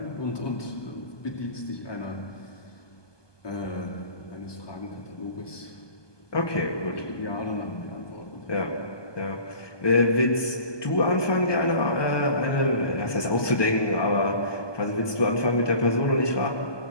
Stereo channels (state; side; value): late; right; 1.2 ms